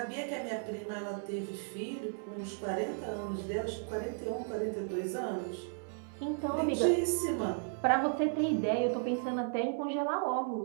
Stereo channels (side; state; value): left; silent; digital silence